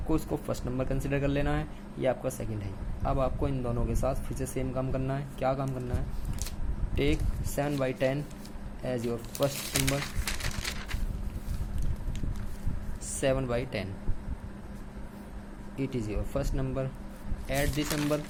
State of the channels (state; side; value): identical; both; correlation 1.00